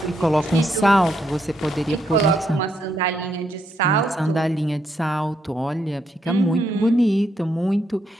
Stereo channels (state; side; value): normal; both; correlation 0.77